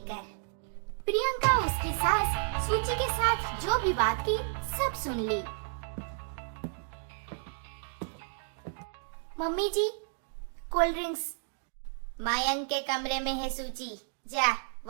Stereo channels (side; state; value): left; silent; digital silence